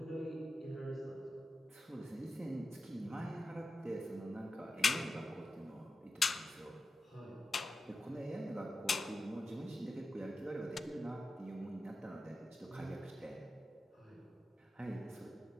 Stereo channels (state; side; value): normal; both; correlation 0.90